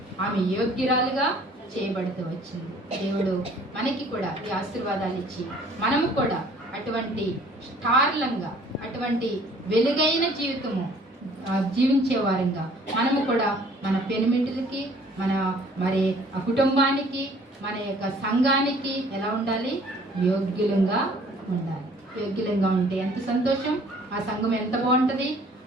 ఆమె యోగ్యురాలుగా చేయబడుతూ వచ్చింది. దేవుడు మనకి కూడా ఈ ఆశీర్వాదాలు ఇచ్చి మనము కూడా అటువంటి స్టార్లంగా, అటువంటి వెలుగైన జీవితము జీవించే వారంగా మనము కూడా మన పెనిమిటిలకి, మరి ఆ కుటుంబానికి, మన యొక్క సంఘానికి ఎలా ఉండాలి? యోగ్యులంగా ఉండాలి. యోగ్యులంగా ఉంటే ఎంత సంతోషం, ఆ సంఘం ఎంత బాగుంటది,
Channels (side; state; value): both; normal; correlation 0.55